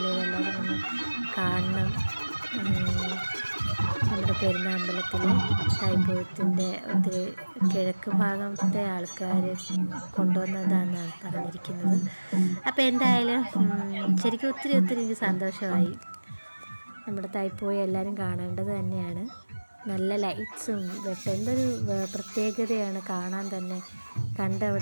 ഇതെല്ലാവരും ഒന്ന് കാണണം. നമ്മുടെ പെരുന്നാമ്പലത്തിലെ തൈപ്പൂയത്തിൻ്റെ ഒത്തിരി കിഴക്ക് ഭാഗത്തെ ആൾക്കാർ കൊണ്ടുവന്നതാണെന്നാണ് പറഞ്ഞിരിക്കുന്നത്. അപ്പോൾ എന്തായാലും ശരിക്കും ഒത്തിരി എനിക്ക് സന്തോഷമായി. നമ്മുടെ തൈപ്പൂയം എല്ലാവരും കാണേണ്ടത് തന്നെയാണ്. നല്ല ലൈറ്റ്സും എന്തൊരു പ്രത്യേകതയാണ് കാണാൻ തന്നെ.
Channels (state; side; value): inverted; both; correlation -1.00